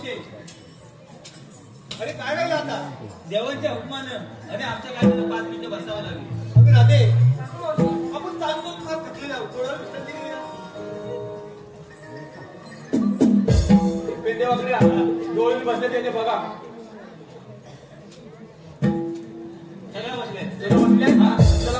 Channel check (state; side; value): identical; both; correlation 1.00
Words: अरे काय वेळ आता देवांच्या हुकमानं आणि आमच्या कायद्यानं 5 मिनिटं बसावं लागेल. अगं राधे आपण चालतो फार थकलेला आहोत. थोडा विश्रांती घेऊया. पेंदेवाकडे डोळे बसले त्याने बघा सगळं बसले चला